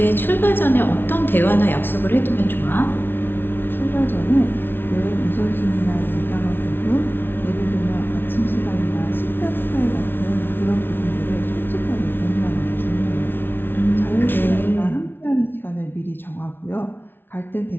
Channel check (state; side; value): late; right; 0.10 ms